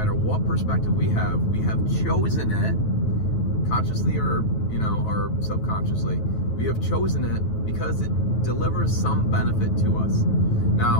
what perspective we have chosen it, consciously or or subconsciously, we have chosen it because it delivers some benefit to us.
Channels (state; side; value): late; right; 9.3 ms